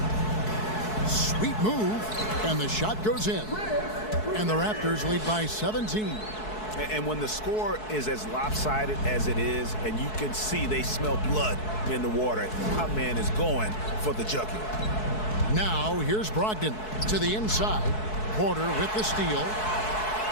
Sweet move. And the shot goes in. And the Raptors lead by 17. And when the score is as lopsided as it is, and you can see they smell blood in the water, our man is going for the jugular. Now here's Brogdon to the inside. Porter with the steal.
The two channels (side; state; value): right; late; 4.6 ms